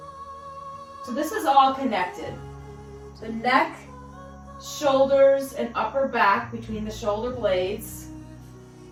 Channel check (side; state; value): both; identical; correlation 1.00